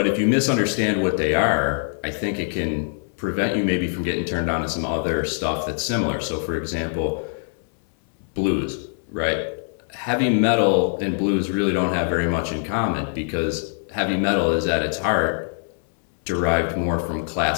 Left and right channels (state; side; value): silent; right; 63 dB below the other